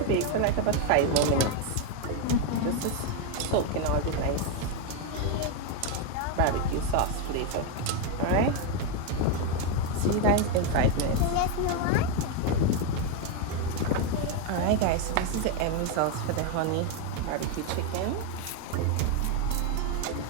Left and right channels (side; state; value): both; different; correlation 0.02